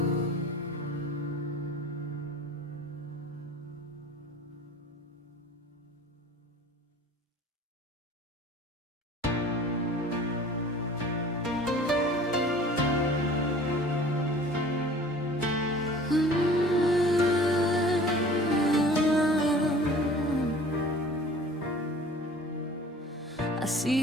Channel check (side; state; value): both; normal; correlation 0.46